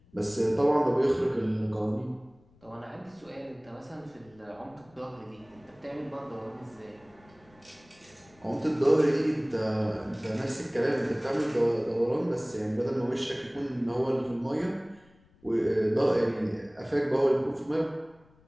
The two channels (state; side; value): noise; left; rumble, 29 dB below the sound